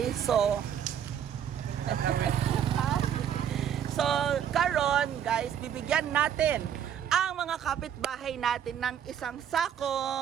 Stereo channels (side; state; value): left; quieter; 9.2 dB